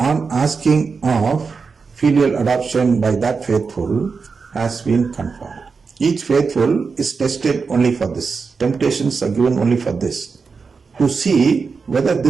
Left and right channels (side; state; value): left; quieter; 5.0 dB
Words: asking of filial adoption by that faithful, has been confirmed. Each faithful is tested only for this. Temptations are given only for this, to see whether